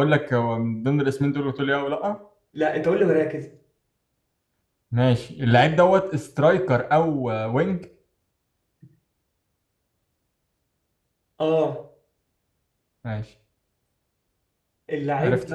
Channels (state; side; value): identical; both; correlation 1.00